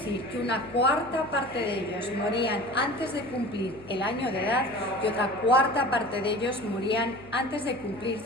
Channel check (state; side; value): noise; left; hum, 21 dB below the sound